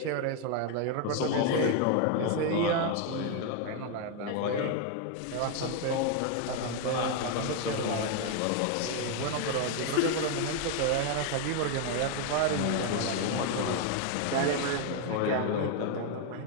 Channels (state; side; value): different; both; correlation 0.01